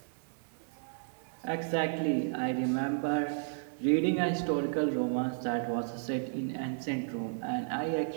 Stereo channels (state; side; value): silent; left; 56 dB below the other